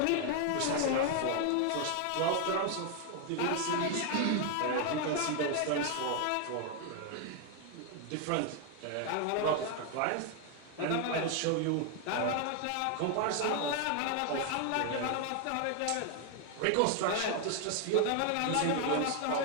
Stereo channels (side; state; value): both; different; correlation 0.01